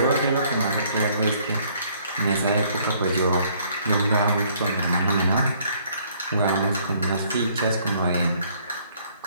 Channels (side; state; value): both; inverted; correlation -0.63